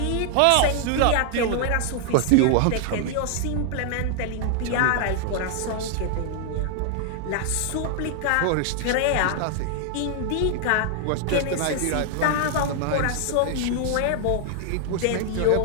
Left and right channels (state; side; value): different; both; correlation 0.00